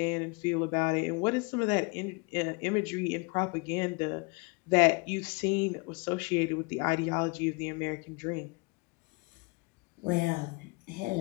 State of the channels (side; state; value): right; quieter; 29.4 dB